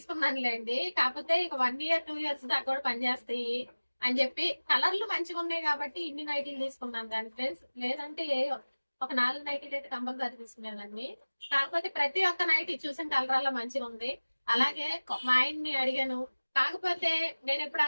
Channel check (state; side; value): inverted; both; correlation -1.00